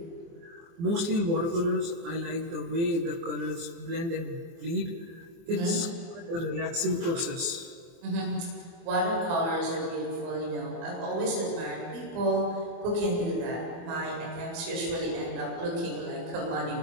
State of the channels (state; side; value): late; left; 24 ms